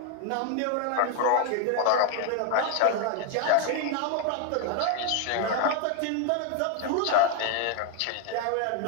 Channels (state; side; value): different; both; correlation 0.01